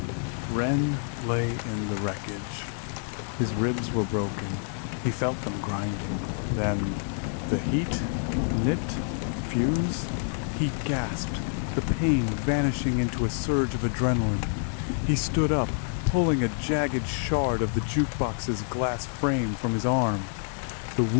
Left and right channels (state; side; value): silent; right; 60 dB below the other